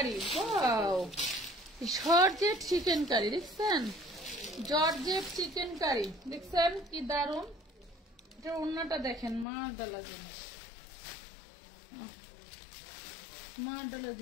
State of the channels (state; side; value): drops out; right; at 9.5 s